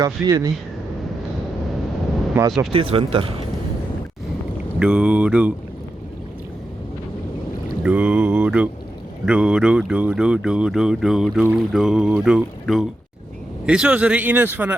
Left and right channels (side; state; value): both; normal; correlation 0.88